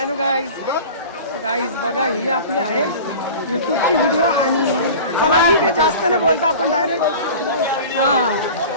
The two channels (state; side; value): inverted; both; correlation -0.37